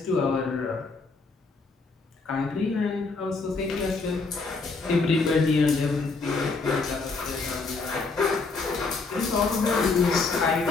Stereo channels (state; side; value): quieter; right; 4.1 dB